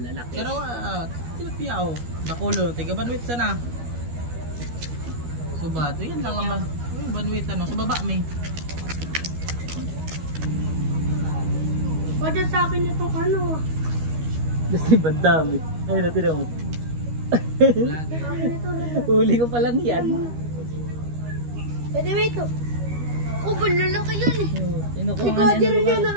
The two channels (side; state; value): left; late; 13 ms